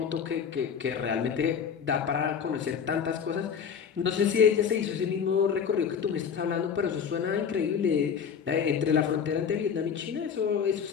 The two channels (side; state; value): right; quieter; 7.1 dB